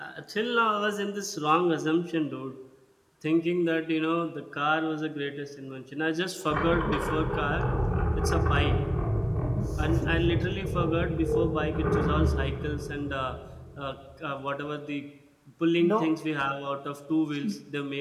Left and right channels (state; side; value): identical; both; correlation 1.00